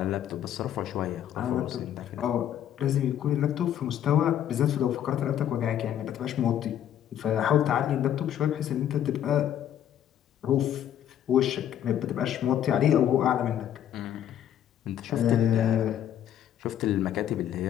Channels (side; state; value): right; quieter; 10.6 dB